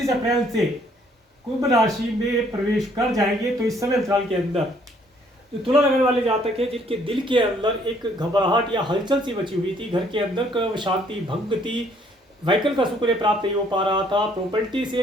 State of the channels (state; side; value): normal; both; correlation 0.64